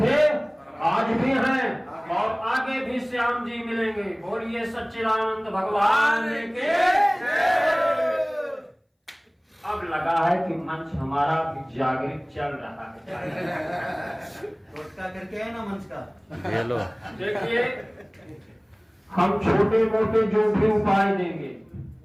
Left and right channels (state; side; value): identical; both; correlation 1.00